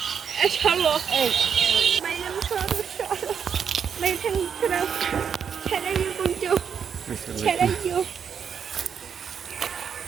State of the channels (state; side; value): quieter; left; 7.3 dB